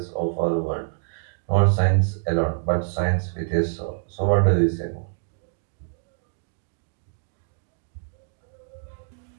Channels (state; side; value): silent; left; digital silence